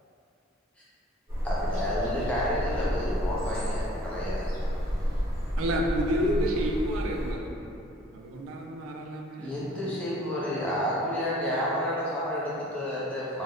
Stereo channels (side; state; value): both; normal; correlation 0.52